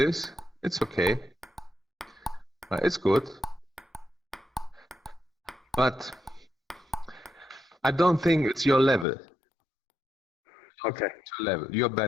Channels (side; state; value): right; drops out; at 9.1 s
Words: It's okay. It's good. But I don't think it's your level. Okay. It's your level. You're